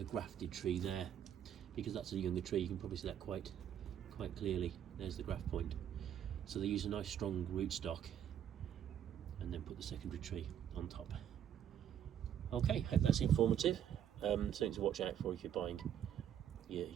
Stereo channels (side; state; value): left; quieter; 9.7 dB